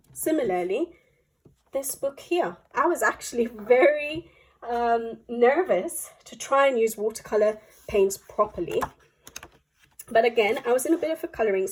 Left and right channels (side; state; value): both; identical; correlation 1.00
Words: Similarly, this book here, I was actually very nervous to try and use watercolor paints properly. But again, I was in a bit of a coloring